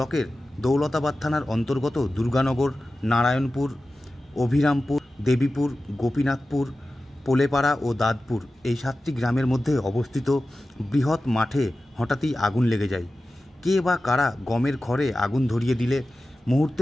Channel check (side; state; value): both; normal; correlation 0.94